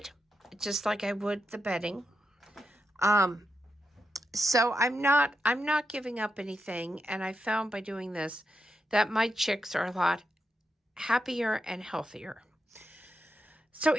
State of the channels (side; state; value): both; normal; correlation 0.85